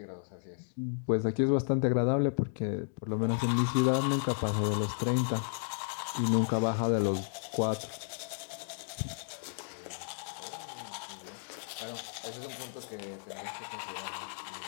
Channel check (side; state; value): right; silent; digital silence